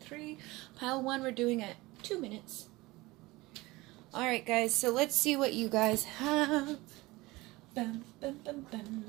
3. Pile 1 we're doing at 2 minutes. Alright guys, so let's see what you guys have. Bum, bum, bum, bum,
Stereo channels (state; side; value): quieter; left; 21.1 dB